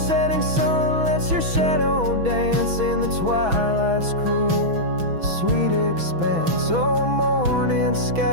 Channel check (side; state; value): left; late; 6.1 ms